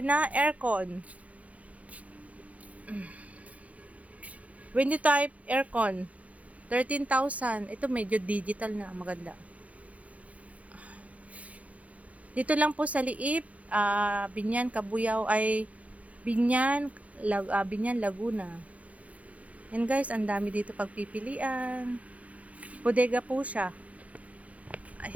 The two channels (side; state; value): left; late; 0.067 ms